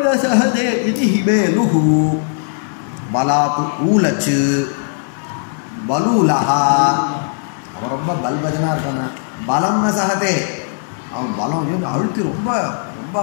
சஹதே இது ஹிமேலு பலாத்து ஊலச்சு பலூலஹா. அவன் ரொம்ப பல்பஜனாக இருக்கான பலம்னு சஹதே அவன் பலம் அழுத்தி ரொம்ப ரொம்ப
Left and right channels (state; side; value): silent; right; digital silence